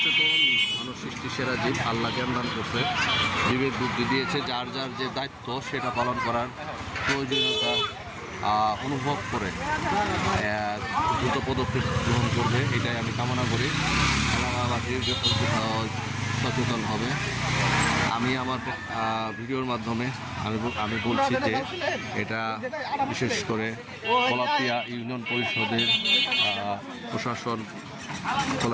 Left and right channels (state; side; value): identical; both; correlation 1.00